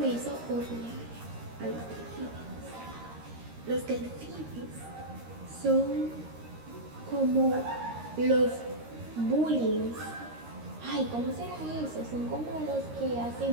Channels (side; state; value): left; late; 13 ms